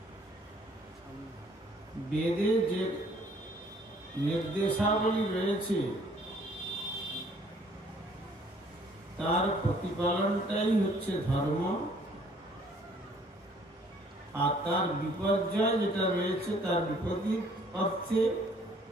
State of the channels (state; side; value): normal; both; correlation 0.60